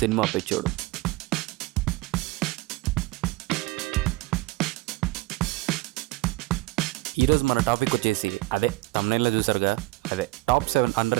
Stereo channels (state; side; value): quieter; left; 20.6 dB